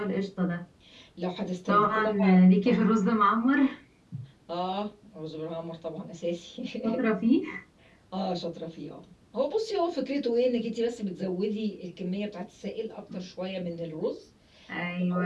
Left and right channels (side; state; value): both; identical; correlation 1.00